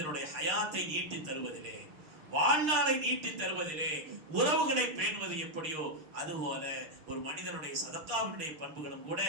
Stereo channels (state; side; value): late; left; 6.5 ms